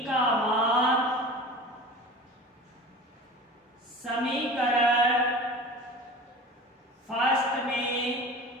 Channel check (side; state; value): both; normal; correlation 0.37